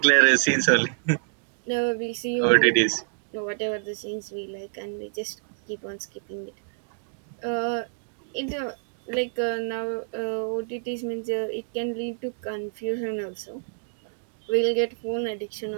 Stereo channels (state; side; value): silent; left; digital silence